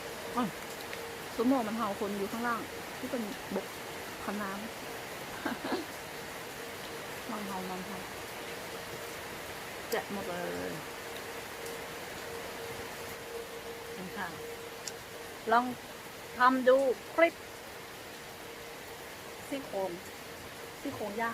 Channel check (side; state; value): both; identical; correlation 1.00